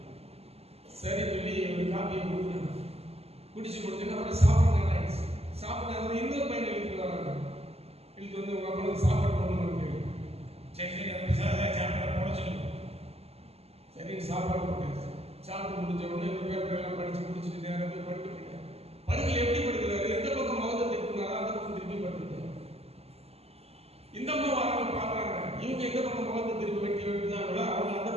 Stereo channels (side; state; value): left; late; 0.29 ms